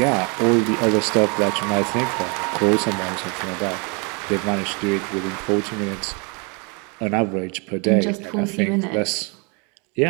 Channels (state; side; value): quieter; left; 33.2 dB